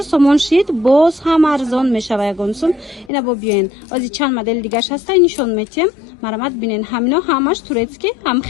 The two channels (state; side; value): drops out; right; at 3.1 s